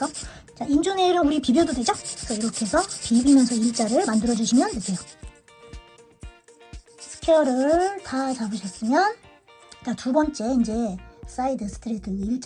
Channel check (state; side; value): identical; both; correlation 1.00